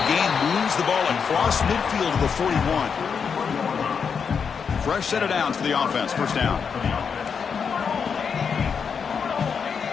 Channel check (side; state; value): right; quieter; 6.3 dB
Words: gain moves the ball across midfield to the 41. Fresh set of downs for the offense. First down.